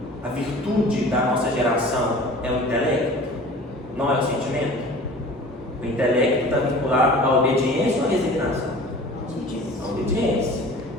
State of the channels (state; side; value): normal; both; correlation 0.42